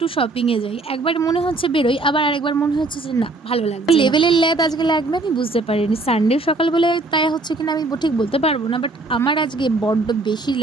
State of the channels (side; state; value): left; quieter; 3.1 dB